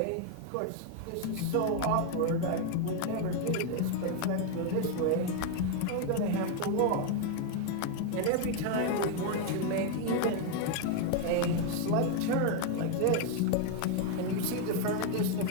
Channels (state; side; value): different; both; correlation 0.01